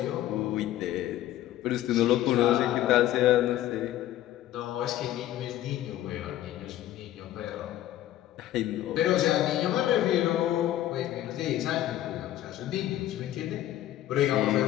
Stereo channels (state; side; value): quieter; right; 13.3 dB